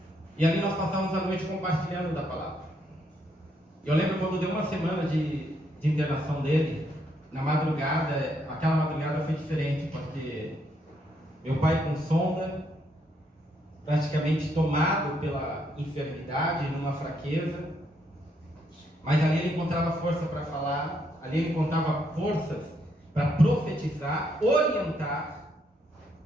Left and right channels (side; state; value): both; normal; correlation 0.74